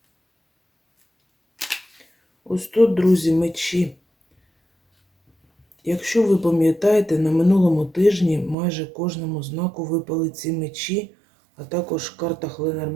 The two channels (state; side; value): drops out; left; at 8.6 s